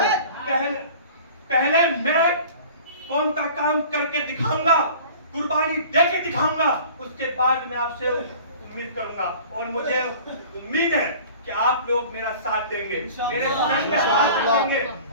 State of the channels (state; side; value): inverted; both; correlation -0.44